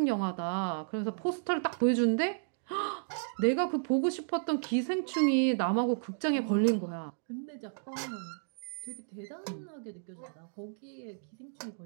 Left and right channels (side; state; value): left; silent; digital silence